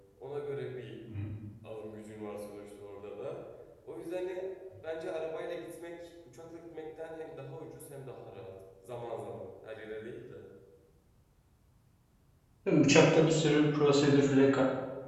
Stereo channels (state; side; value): identical; both; correlation 1.00